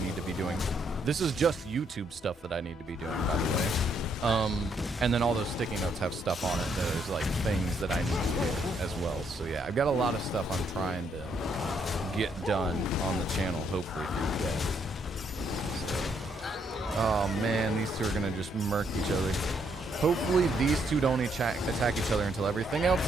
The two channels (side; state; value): both; normal; correlation 0.73